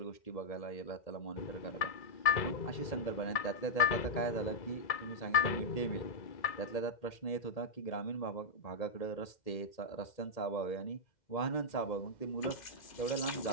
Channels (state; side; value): late; right; 2.1 ms